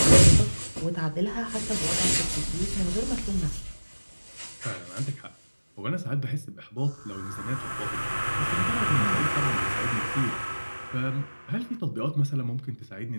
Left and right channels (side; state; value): both; inverted; correlation -1.00